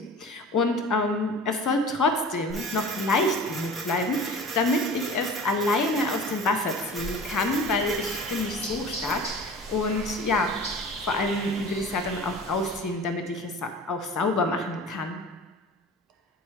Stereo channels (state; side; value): normal; both; correlation 0.39